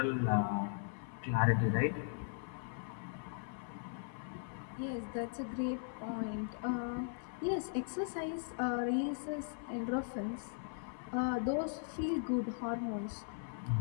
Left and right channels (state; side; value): silent; right; 52 dB below the other